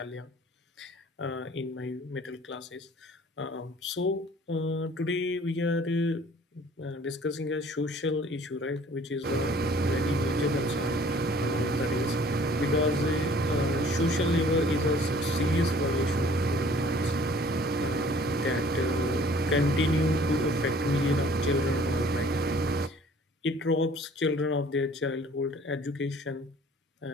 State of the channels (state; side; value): normal; both; correlation 0.53